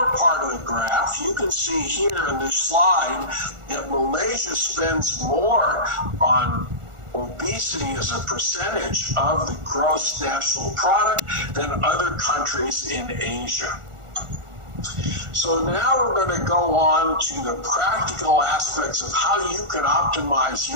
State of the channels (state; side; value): late; left; 1.4 ms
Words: part of the graph, you can see here in this slide that Malaysia spends more on obesity as a percentage of the gross national product than other countries in Asia. So now we're going to go on to the practical aspects of how you can optimize